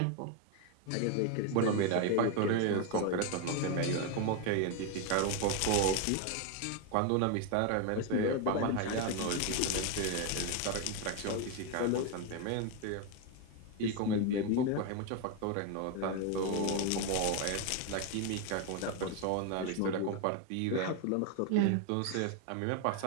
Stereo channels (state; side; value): different; both; correlation 0.01